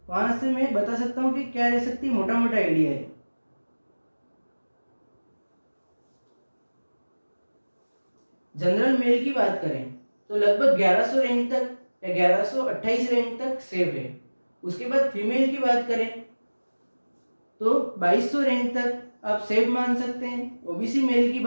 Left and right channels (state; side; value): inverted; both; correlation -1.00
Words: वहां से मैं बता सकता हूँ कि क्या रह सकती है। मोटा आइडिया है। जनरल मेल की बात करें तो लगभग 1100 रैंक तक या 1128 रैंक तक सेफ है। उसके बाद फीमेल की बात करें तो 2200 रैंक तक आप सेफ मान सकते हैं। OBC मेल की